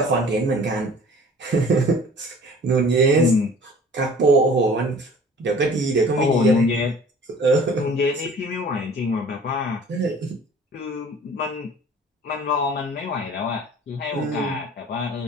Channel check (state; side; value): normal; both; correlation 0.48